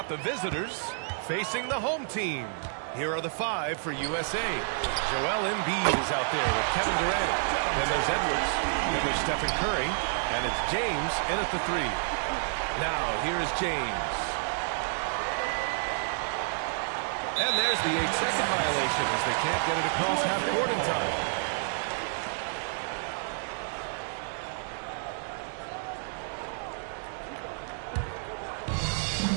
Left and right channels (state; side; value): silent; left; 58 dB below the other